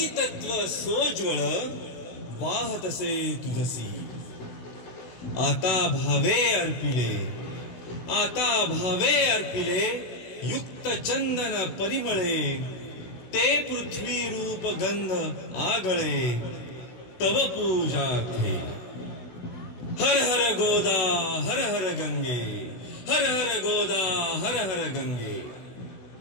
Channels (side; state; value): right; late; 16 ms